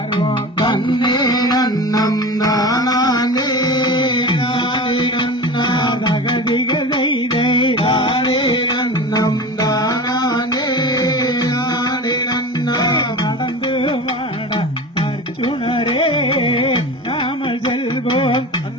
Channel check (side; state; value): both; normal; correlation 0.31